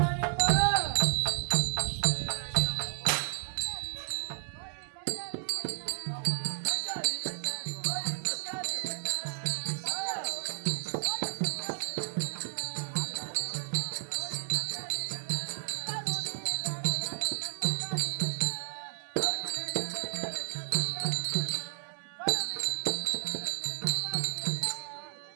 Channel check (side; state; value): left; silent; digital silence